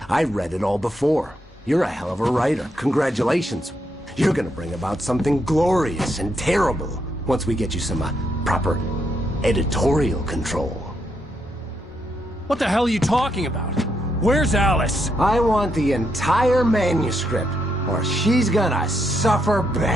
I read it all before. You're a hell of a writer. Congratulations. You're gonna bring about something glorious and terrible once we get you some proper editorial control. What the hell are you talking about? Where's Alice? I want the entire manuscript, or she's gonna suffer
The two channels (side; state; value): both; normal; correlation 0.79